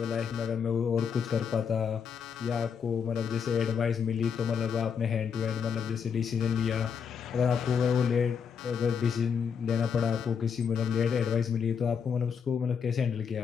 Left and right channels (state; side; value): quieter; right; 6.8 dB